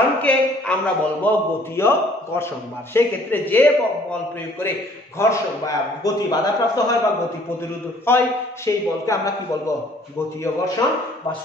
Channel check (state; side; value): normal; both; correlation 0.58